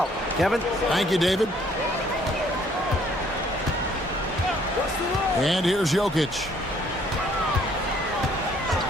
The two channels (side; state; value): both; normal; correlation 0.63